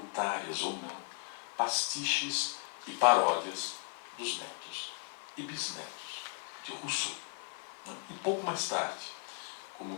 ou não, pastiches e paródias dos netos e bisnetos de Rousseau. E pouco mais tarde, como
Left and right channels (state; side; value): quieter; right; 38.6 dB